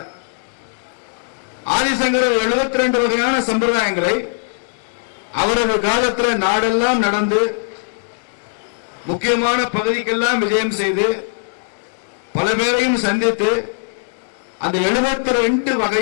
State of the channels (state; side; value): silent; right; digital silence